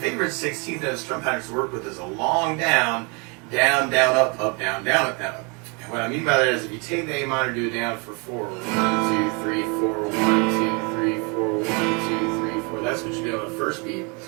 16th note strum patterns to work with is a long down, down, down, up, down, down, up, down, up. And what I mean by that is if you take the A minor, do it down for 4. 1, 2, 3, 4, 1, 2, 3, 4, 1, 2, 3, 4. That's what you do on the first beat.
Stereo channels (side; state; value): left; quieter; 32.3 dB